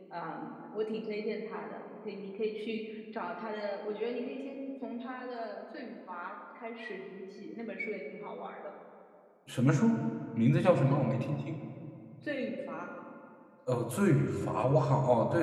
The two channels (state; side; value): identical; both; correlation 1.00